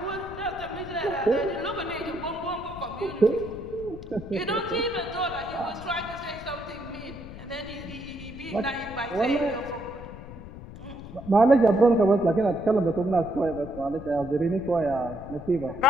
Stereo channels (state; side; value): noise; left; rumble, 14 dB below the sound